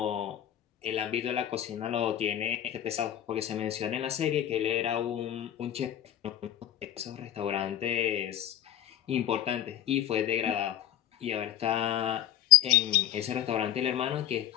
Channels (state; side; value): quieter; right; 11.7 dB